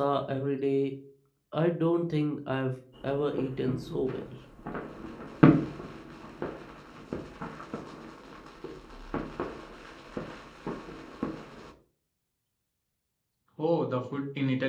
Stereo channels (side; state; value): both; identical; correlation 1.00